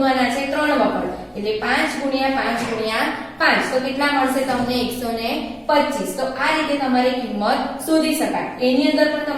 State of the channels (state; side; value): identical; both; correlation 1.00